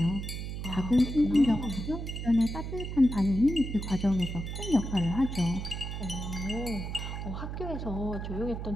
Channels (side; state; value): right; noise; hum, 6 dB below the sound